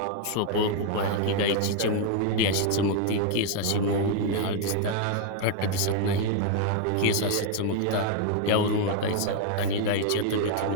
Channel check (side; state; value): both; different; correlation 0.00